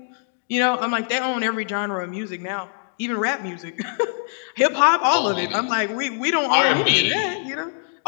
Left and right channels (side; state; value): right; silent; digital silence